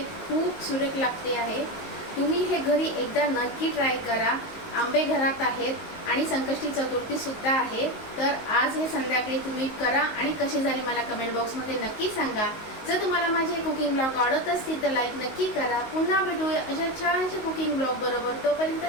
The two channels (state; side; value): late; right; 19 ms